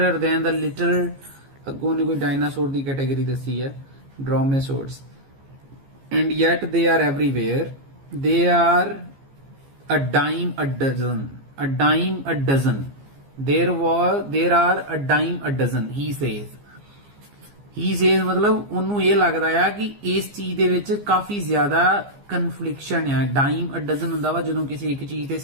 than the little, ਅੱਗੋਂ ਨੇ ਕੋਈ ਡਾਇਨਾਸੌਰ ਦੀ ਕੈਟਾਗਰੀ ਦੱਸੀ ਹੈ, ਡਰੋਮੇਸੌਰਸ, and yet they are everywhere. They are a dime a dozen. There are a dime a dozen, he says. ਮਤਲਬ ਉਹਨੂੰ ਇਹ ਲੱਗਦਾ ਆ ਕਿ ਇਸ ਚੀਜ਼ ਦੇ ਵਿੱਚ ਕਾਫੀ ਜ਼ਿਆਦਾ ਕਨਫਲਿਕਸ਼ਨ ਆ। ਡਾਈਮ ਅ ਡਜ਼ਨ ਹੁੰਦਾ ਵਾ ਜਦੋਂ ਕਿਸੇ ਇੱਕ ਚੀਜ਼ ਤੇ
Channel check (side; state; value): left; late; 15 ms